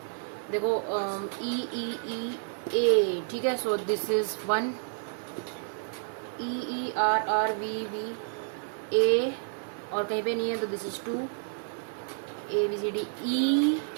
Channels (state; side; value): silent; left; 58 dB below the other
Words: देखो ई ई ई ए, ठीक है। So this is 1, E E R R V V A, और कहीं पे नहीं है तो this is 2, A B C D E